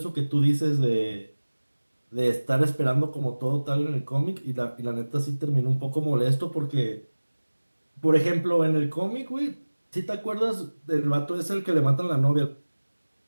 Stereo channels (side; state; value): both; inverted; correlation -1.00